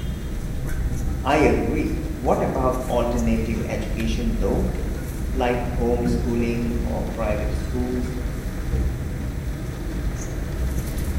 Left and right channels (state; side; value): identical; both; correlation 1.00